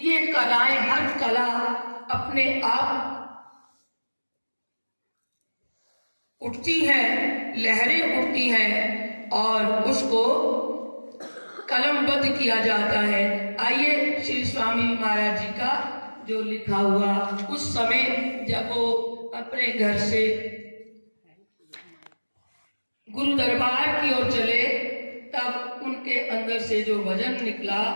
कलाएं, हर कला अपने आप उठती है, लहरें उठती हैं और उसको कलमबद्ध किया जाता है। आइए श्री स्वामी महाराज जी का जो लिखा हुआ, उस समय जब वो अपने घर से गुरु दरबार की ओर चले, तब उनके अंदर से जो भजन निकला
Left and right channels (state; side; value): inverted; both; correlation -1.00